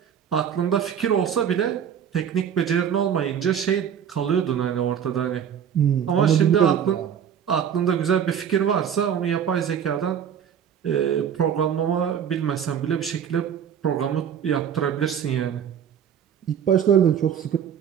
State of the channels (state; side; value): quieter; left; 8.4 dB